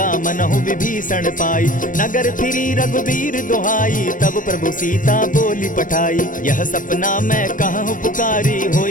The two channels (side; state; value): right; late; 0.38 ms